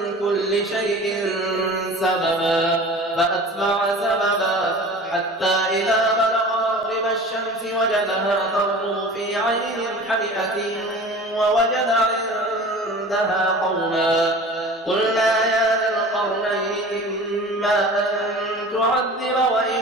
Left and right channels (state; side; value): normal; both; correlation 0.39